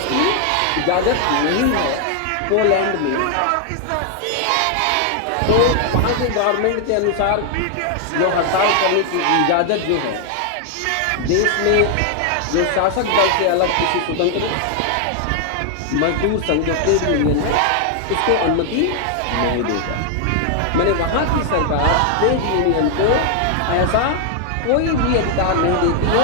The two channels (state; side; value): different; both; correlation 0.00